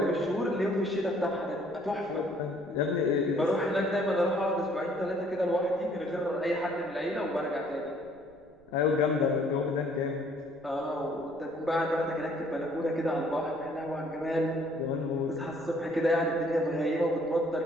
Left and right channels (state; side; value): noise; right; rumble, 29 dB below the sound